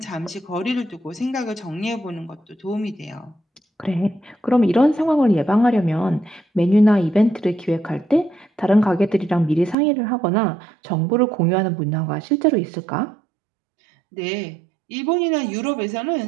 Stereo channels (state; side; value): drops out; left; at 9.8 s